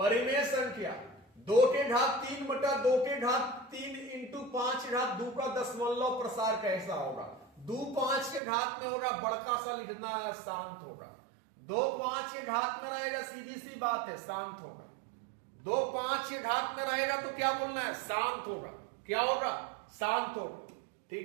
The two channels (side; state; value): left; drops out; at 8.4 s